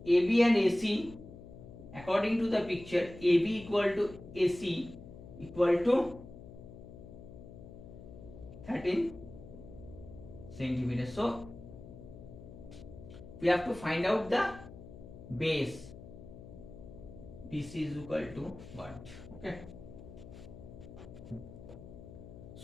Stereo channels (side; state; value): left; noise; hum, 15 dB below the sound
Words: AB and AC, according to the picture, AB equal to AC equal to 13 centimeters. So we have to find out the base. BC is equal to what? Okay.